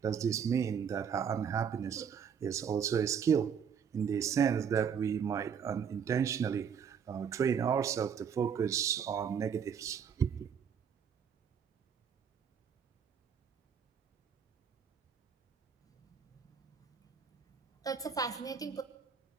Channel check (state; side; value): quieter; left; 7.4 dB